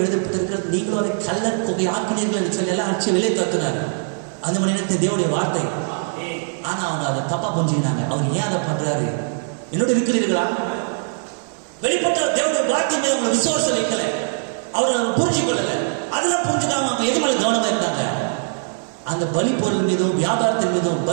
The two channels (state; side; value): silent; left; digital silence